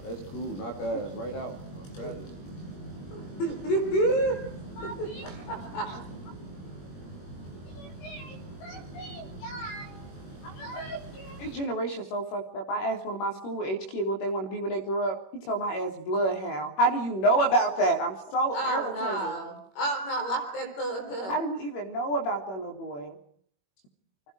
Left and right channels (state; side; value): late; right; 21 ms